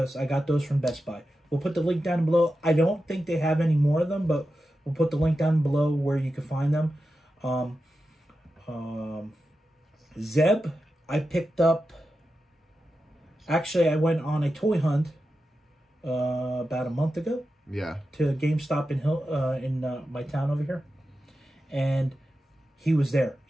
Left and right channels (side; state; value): both; normal; correlation 0.91